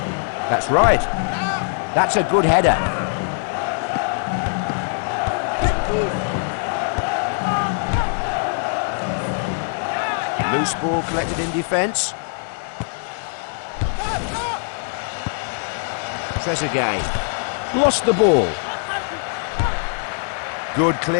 That's right. That's a good header. Loose ball collected in defence. Trezeguet. Lost the ball. Good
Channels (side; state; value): right; silent; 62 dB below the other